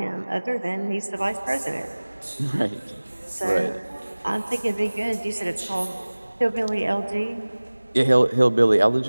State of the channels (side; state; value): both; inverted; correlation -1.00